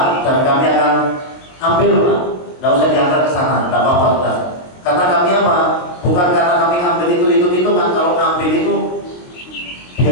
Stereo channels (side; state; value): right; late; 23 ms